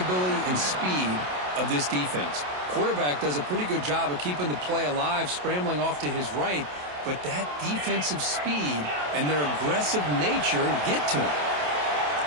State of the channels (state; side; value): late; left; 27 ms